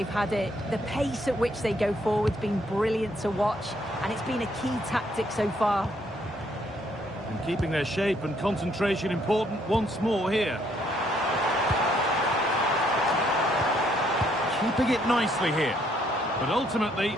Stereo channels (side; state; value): both; normal; correlation 0.69